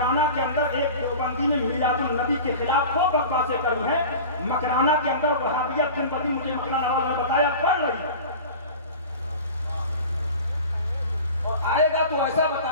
کے اندر ایک دیوبندی نے میلاد النبی کے خلاف وہ بکواسیں کری ہیں، مکرانہ کے اندر وہابیت دن بدن مجھے مکرانہ والوں نے بتایا پڑھ رہی ہے، اور آئے گا تو ایسا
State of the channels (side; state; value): both; inverted; correlation -0.36